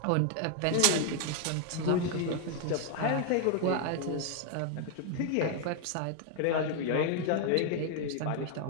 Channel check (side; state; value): both; different; correlation 0.00